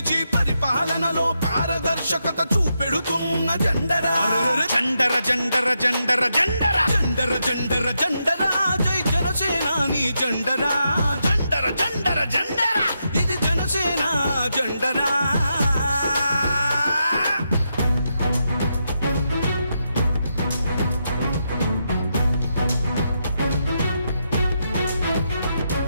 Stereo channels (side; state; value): both; inverted; correlation -0.83